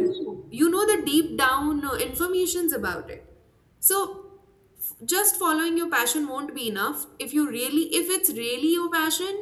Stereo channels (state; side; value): identical; both; correlation 1.00